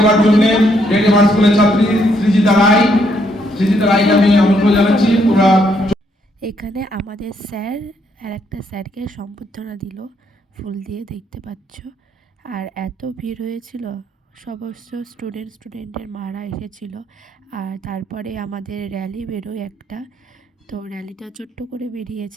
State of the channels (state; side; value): normal; both; correlation 0.72